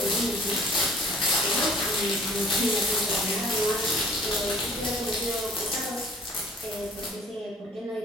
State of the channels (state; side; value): normal; both; correlation 0.52